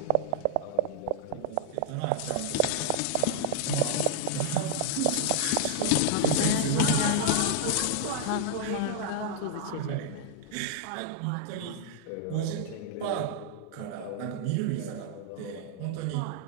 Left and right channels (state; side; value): different; both; correlation 0.00